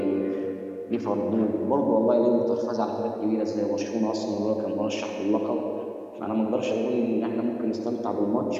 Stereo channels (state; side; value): identical; both; correlation 1.00